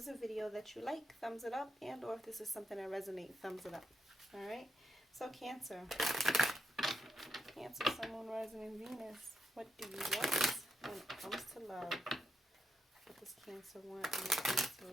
a video that you like, thumbs it up, and or if this is something that resonates, thumbs it up. Alright? So Cancer. Cancer, Sun, Moon, Rising, and Venus. What do you want when it comes to love? What does Cancer want when it comes to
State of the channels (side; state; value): both; normal; correlation 0.82